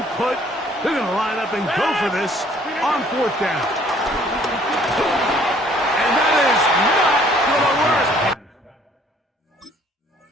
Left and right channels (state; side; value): normal; both; correlation 0.59